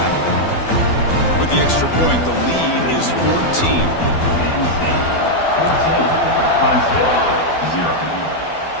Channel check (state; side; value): late; right; 12 ms